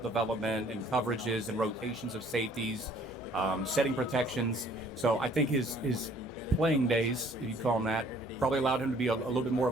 development and coverages and rotations of safeties, setting protections. So I think his playing days, if you call them that, probably allowed him to be a little bit more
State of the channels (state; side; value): normal; both; correlation 0.58